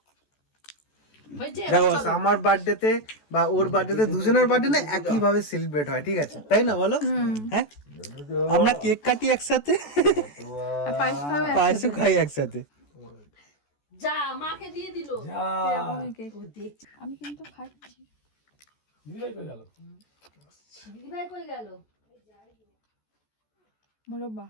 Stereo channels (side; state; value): right; late; 14 ms